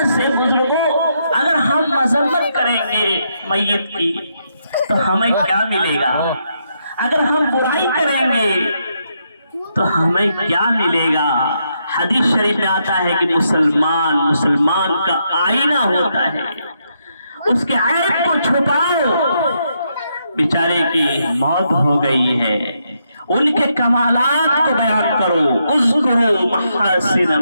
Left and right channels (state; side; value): inverted; both; correlation -0.79